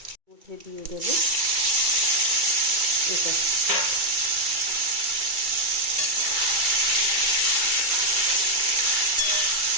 মধ্যে দিয়ে দেব এটা।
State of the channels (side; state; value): left; late; 2.2 ms